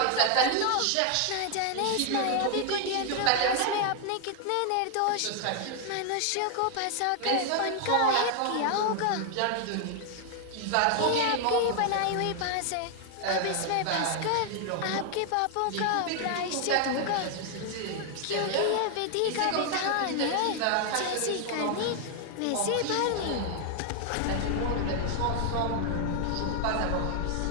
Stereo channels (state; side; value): different; both; correlation 0.00